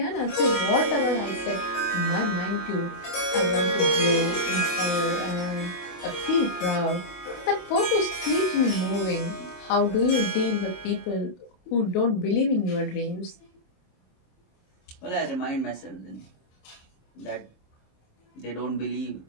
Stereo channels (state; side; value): late; right; 27 ms